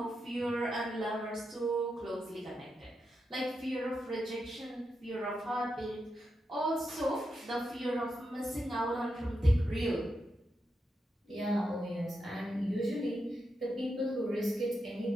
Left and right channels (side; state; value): both; normal; correlation 0.86